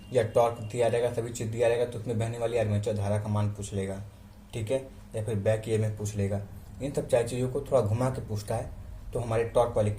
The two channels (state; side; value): identical; both; correlation 1.00